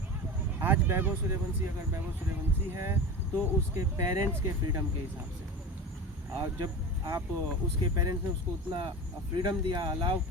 आज वैभव सूर्यवंशी अगर वैभव सूर्यवंशी है तो उसके पेरेंट्स के फ्रीडम के हिसाब से, और जब आप उसके पेरेंट्स ने उसको उतना फ्रीडम दिया, अलाउ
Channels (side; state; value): both; normal; correlation 0.29